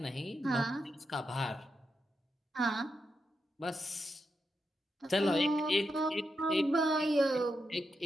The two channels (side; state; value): both; normal; correlation 0.85